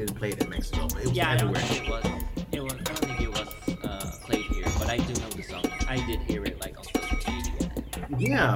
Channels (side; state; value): both; identical; correlation 1.00